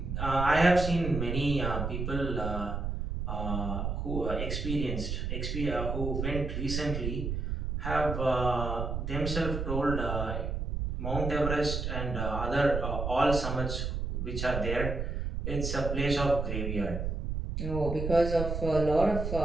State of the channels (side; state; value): right; noise; rumble, 3 dB below the sound